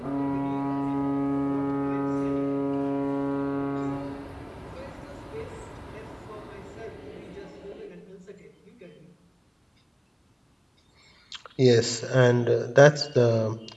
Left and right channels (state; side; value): identical; both; correlation 1.00